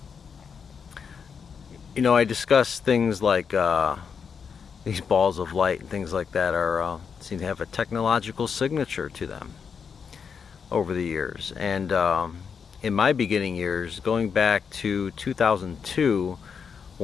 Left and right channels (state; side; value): quieter; right; 6.4 dB